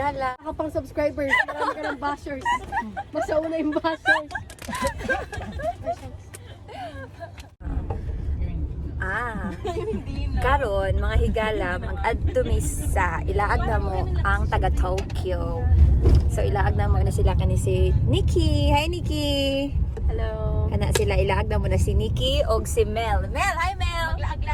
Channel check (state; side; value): identical; both; correlation 1.00